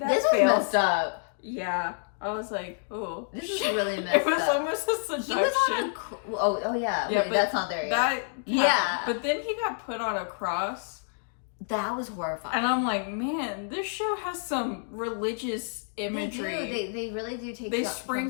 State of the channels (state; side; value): silent; right; digital silence